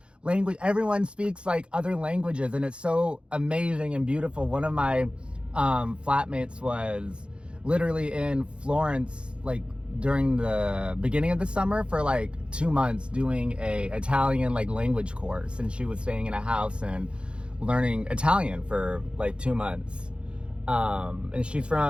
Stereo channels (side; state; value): left; late; 0.057 ms